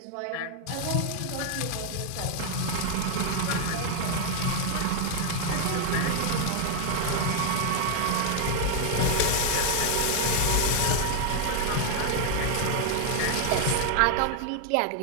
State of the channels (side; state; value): both; different; correlation 0.01